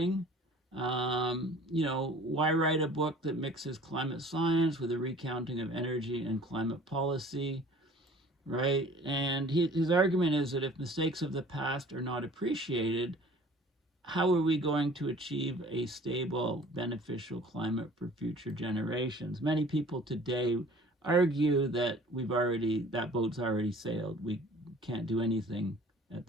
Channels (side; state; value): both; normal; correlation 0.49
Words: Why write a book that mixes climate science with a recounting of energy and climate policy, right? And his argument is that if mistakes of the past are not appreciated, how are we going to achieve a stable, beneficial climate for future generations? Many people today argue that that boat's already sailed. We can't do anything at